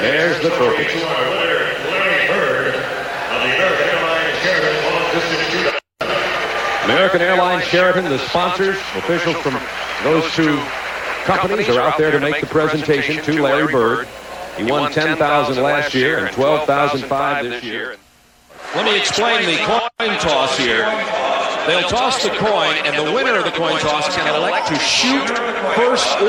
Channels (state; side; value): identical; both; correlation 1.00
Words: there's the token. American Airlines Sheraton, the sponsors, officials from those two companies are out there to make the presentation to Larry Bird. He won $10,000 last year and $12,500 this year. Let me explain the coin toss here. They'll toss the coin, and the winner of the coin toss can elect to shoot first